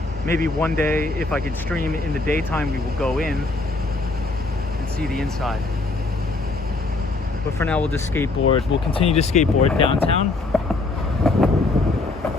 Maybe one day, if I could stream in the daytime, we will go in and see the inside. But for now, we'll just skateboard. We'll continue to skateboard downtown.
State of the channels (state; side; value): quieter; right; 3.4 dB